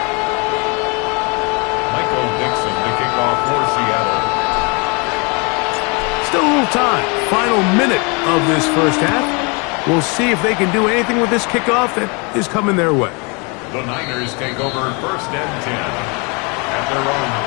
Still a little time. Final minute of this first half. We'll see if they can do anything with this kickoff that is coming their way. The Niners take over first and 10 at their own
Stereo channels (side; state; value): right; quieter; 31.4 dB